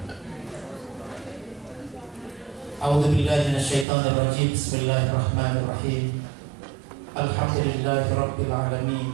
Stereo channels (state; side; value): drops out; left; at 3.9 s